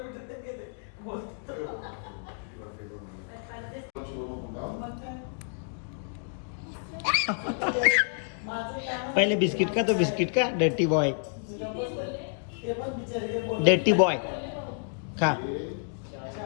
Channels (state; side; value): silent; right; 58 dB below the other